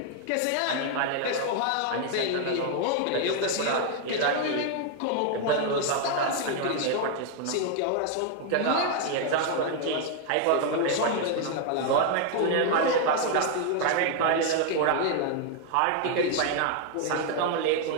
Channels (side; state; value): both; different; correlation 0.00